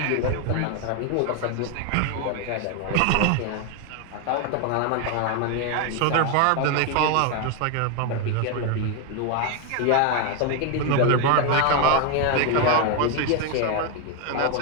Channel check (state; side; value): different; both; correlation 0.01